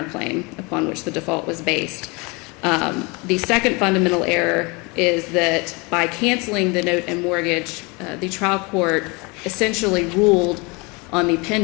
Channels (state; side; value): quieter; right; 28.0 dB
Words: upon which the default was based. The second fundamental error is that by canceling the note and mortgage, the trial court essentially ruled on the